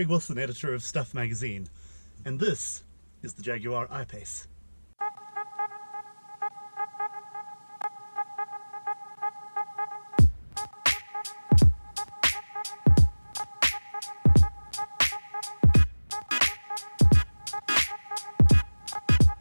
Wilson, editor of Stuff magazine, and this is the Jaguar I-Pace.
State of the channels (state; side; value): inverted; both; correlation -1.00